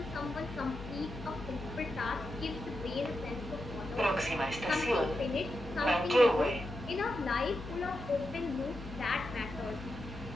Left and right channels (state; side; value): noise; left; hum, 11 dB below the sound